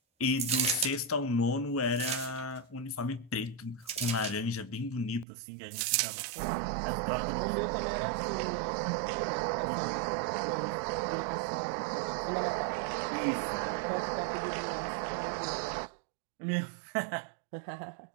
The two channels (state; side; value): drops out; left; at 5.2 s